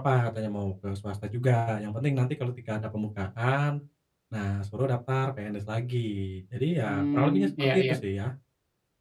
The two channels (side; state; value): both; identical; correlation 1.00